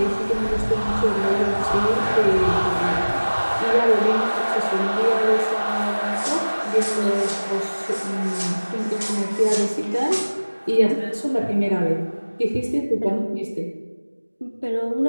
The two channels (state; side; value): inverted; both; correlation -1.00